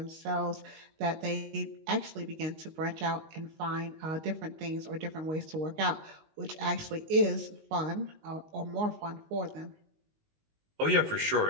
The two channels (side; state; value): left; late; 19 ms